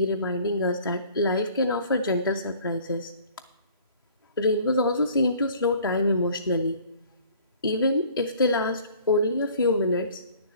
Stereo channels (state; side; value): inverted; both; correlation -0.52